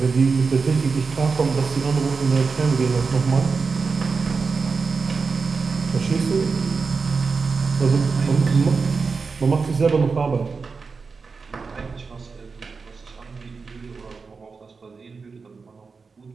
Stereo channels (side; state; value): left; quieter; 4.8 dB